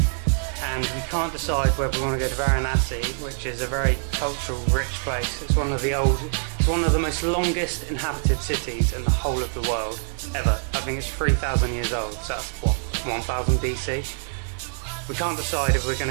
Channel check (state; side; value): silent; left; 62 dB below the other